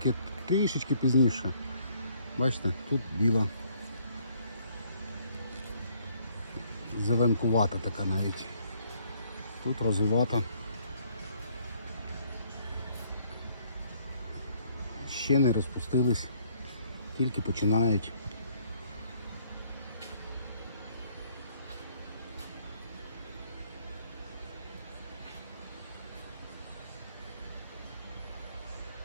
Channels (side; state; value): both; inverted; correlation -0.65